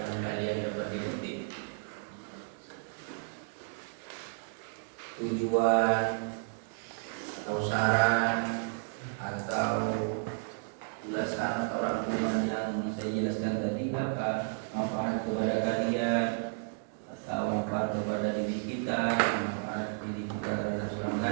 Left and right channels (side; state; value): left; silent; digital silence